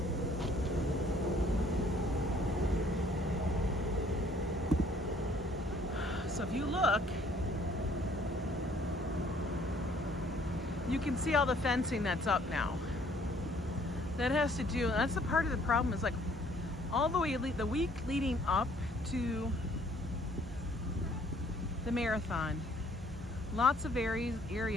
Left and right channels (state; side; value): normal; both; correlation 0.61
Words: So if you look, you can see all the fencing that's up now. That has to do, that's the part of the problem, is like all the way, the week leading up to the marathon, lots of